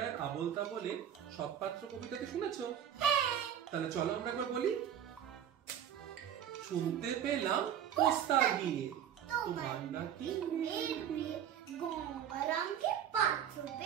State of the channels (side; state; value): left; quieter; 9.5 dB